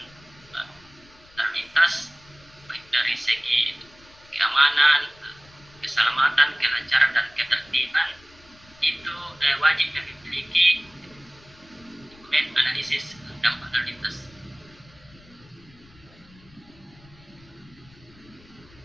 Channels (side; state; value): left; noise; rumble, 25 dB below the sound